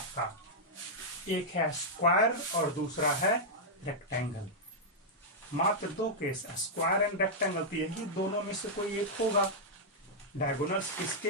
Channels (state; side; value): normal; both; correlation -0.06